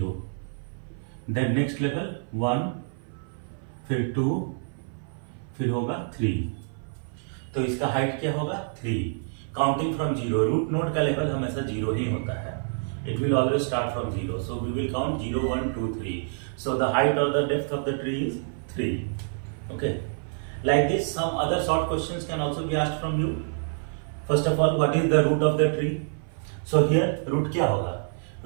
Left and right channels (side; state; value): left; silent; 57 dB below the other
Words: then next level 1, फिर 2, फिर होगा 3. तो इसका हाइट क्या होगा? 3. काउंटिंग फ्रॉम 0, रूट नोड का लेवल हमेशा 0 ही होता है. It will always start from 0, so we will count 0, 1, 2, 3. So the height or the depth of the tree is 3. Okay, like this some other short questions can also be asked from you. First of all, what is the root of the tree? So here root क्या होगा?